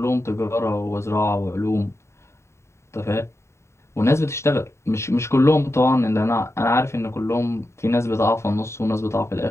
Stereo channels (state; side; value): late; right; 0.13 ms